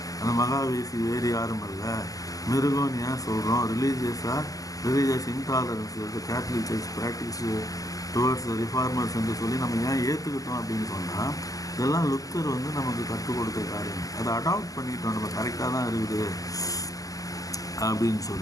அந்த மகாவேசி வேறு யாரும் இல்லை, மிருகம்னு ஏன் சொல்கிறோம், religious intolerance Catholic church practice towards reformers என்று சொல்லி நம்ம ஏன் ஏற்றுக்கிட்டோம் அப்படின்னு சொன்னால், இதெல்லாம் லுத்தர் நமக்கு கற்றுக் கொடுத்த காரியம். அதை அடாப்ட் பண்ணிக்கிட்டோம், நம்ம கரெக்டாக தான் இருக்குது அப்படின்னு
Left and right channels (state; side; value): late; right; 0.17 ms